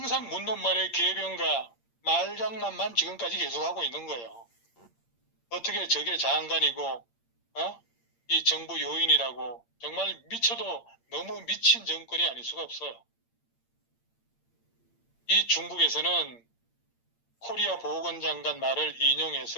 묻는 말에 개변과 말장난만 지금까지 계속하고 있는 거예요. 어떻게 저게 장관이고 이 정부 요인이라고 정말 미쳐도 너무 미친 정권이 아닐 수가 없어요. 이 중국에서는 코리아 보건장관 말을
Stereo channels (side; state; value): right; late; 8.7 ms